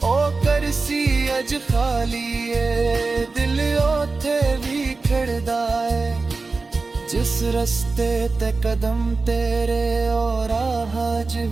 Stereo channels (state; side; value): quieter; left; 3.9 dB